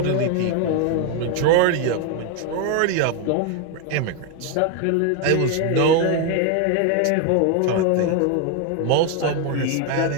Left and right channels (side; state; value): both; different; correlation 0.01